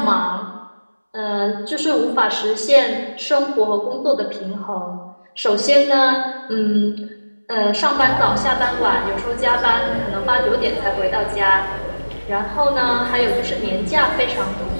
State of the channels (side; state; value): both; inverted; correlation -1.00